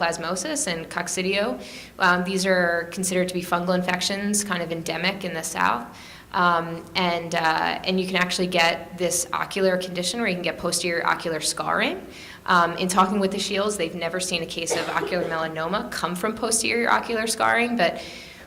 and coccidio. These are considered to be fungal infections, kind of endemic in the South. And you can actually get this ocular condition where you can get posterior ocular scarring. In talking with the Shields, they've never seen a case of ocular melanoma come from posterior ocular scarring, but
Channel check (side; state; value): both; identical; correlation 1.00